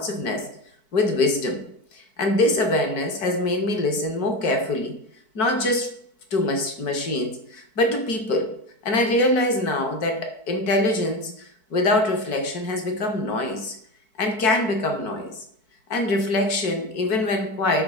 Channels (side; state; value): right; late; 4.6 ms